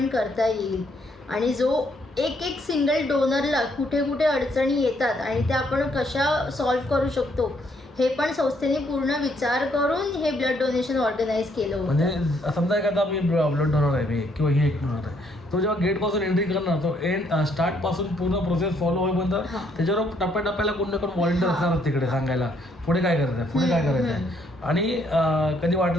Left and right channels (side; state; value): both; normal; correlation 0.70